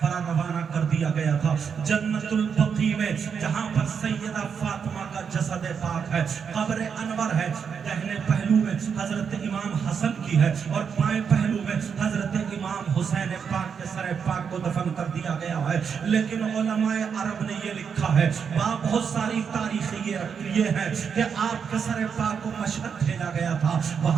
روانہ کر دیا گیا تھا, جنت البقیع میں, جہاں پر سیدہ فاطمہ کا جسد پاک ہے. قبر انور ہے, دہنے پہلو میں حضرت امام حسن کی ہے, اور بائیں پہلو میں حضرت امام حسین پاک کے سر پاک کو دفن کر دیا گیا ہے. لیکن علماء عرب نے یہ لکھا ہے, وہاں بہت ساری تاریخیں یہ ہے کہ آپ کے سر پاک کو مشہد بھیجا گیا تھا,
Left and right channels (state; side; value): quieter; left; 6.7 dB